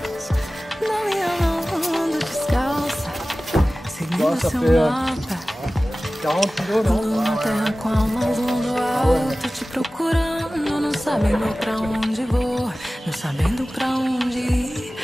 da minha mão descalça, seguindo seu mapa. 40 kilos, non? Na terra com a mão do alto, te procurando, não sabendo pra onde vou, não sabendo pra onde ir.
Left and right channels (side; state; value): both; normal; correlation 0.97